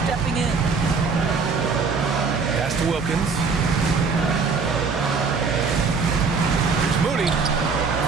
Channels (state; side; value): quieter; left; 4.9 dB